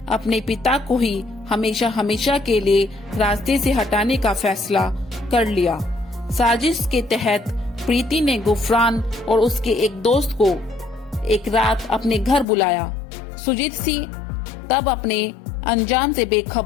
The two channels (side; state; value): right; drops out; at 12.5 s